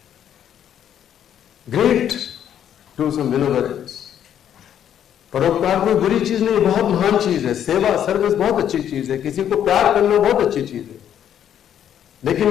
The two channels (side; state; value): right; quieter; 9.8 dB